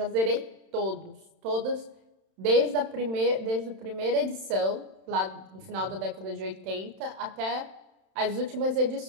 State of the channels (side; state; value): left; late; 31 ms